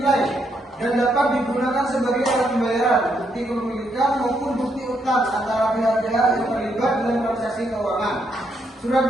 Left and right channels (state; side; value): normal; both; correlation 0.77